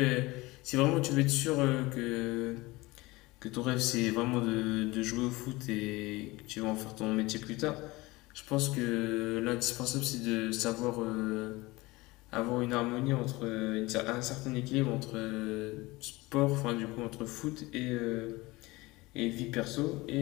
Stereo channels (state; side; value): quieter; right; 21.5 dB